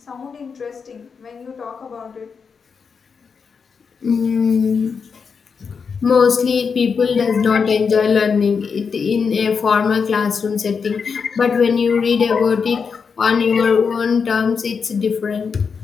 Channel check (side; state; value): right; quieter; 5.8 dB